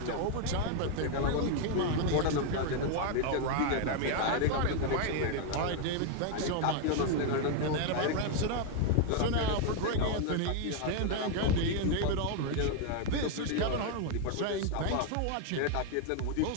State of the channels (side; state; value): both; different; correlation 0.00